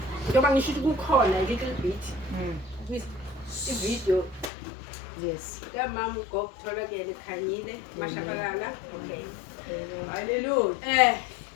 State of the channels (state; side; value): drops out; right; at 4.5 s